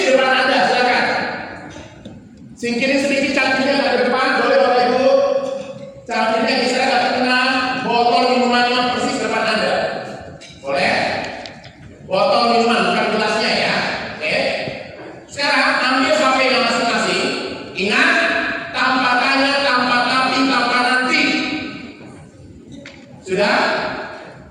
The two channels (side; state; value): both; identical; correlation 1.00